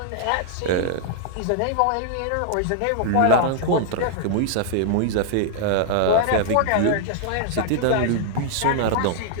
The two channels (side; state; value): both; different; correlation 0.00